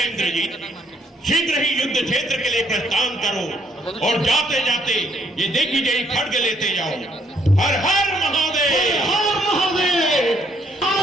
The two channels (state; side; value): normal; both; correlation 0.69